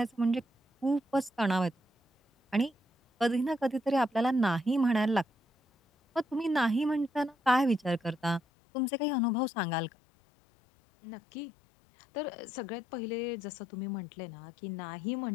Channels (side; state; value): right; drops out; at 8.4 s